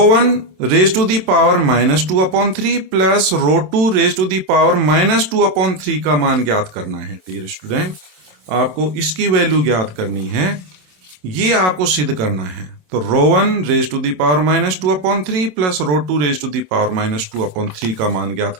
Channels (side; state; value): left; late; 27 ms